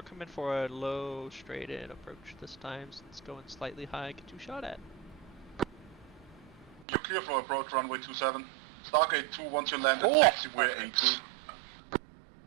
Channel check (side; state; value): left; drops out; at 6.9 s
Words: coming for a low, straight in approach this time, since it's going slightly high. Get you shot at. You're clear for approach, runway 27. Stargate 2, once you land at Oh, taxiway A2.